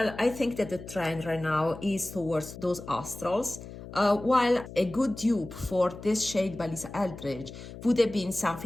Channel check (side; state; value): left; noise; hum, 13 dB below the sound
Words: I think that the trend right now is towards those astrals. While a good dupe for this shade by Lisa Eldridge would have been